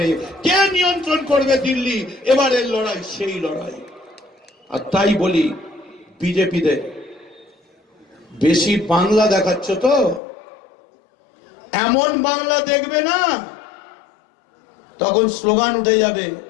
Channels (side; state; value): right; drops out; at 10.2 s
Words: কে নিয়ন্ত্রণ করবে দিল্লি? এবারের লড়াই সেই লড়াই। আর তাই বলি বিজেপিদের, বেশি বাংলা দেখাচ্ছ তো, এমন বাংলা দেখবে না, তখন স্লোগান উঠে যাবে,